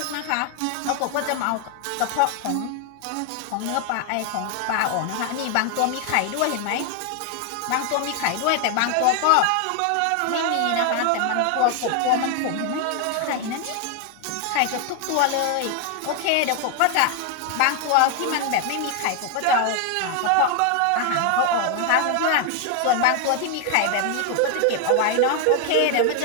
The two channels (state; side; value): different; both; correlation 0.00